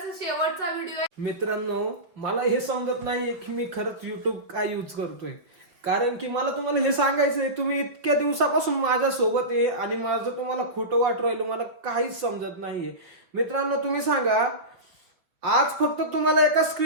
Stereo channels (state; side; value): late; left; 5.2 ms